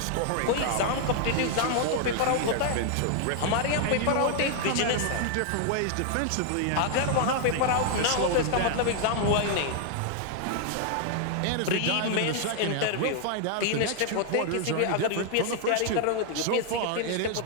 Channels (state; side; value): different; both; correlation 0.00